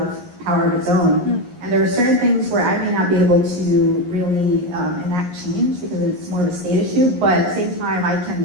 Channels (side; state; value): left; late; 11 ms